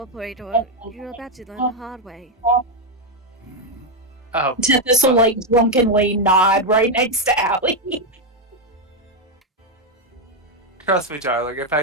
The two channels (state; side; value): normal; both; correlation 0.03